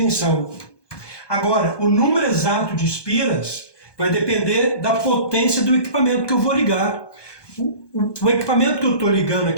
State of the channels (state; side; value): late; right; 1.2 ms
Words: Agora, o número exato de espiras vai depender da potência do equipamento que eu vou ligar. O equipamento que eu estou ligando